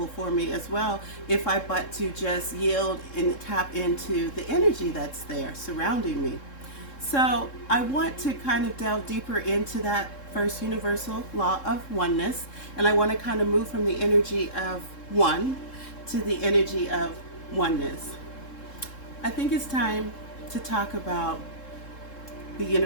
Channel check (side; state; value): right; late; 3.7 ms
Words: for me as well, if I but to just yield and tap into the energy that's there surrounding me. So I want to kind of delve deeper into that first universal law of oneness, and I want to kind of move from the energy of one to the energy of oneness. I think it's time to talk about the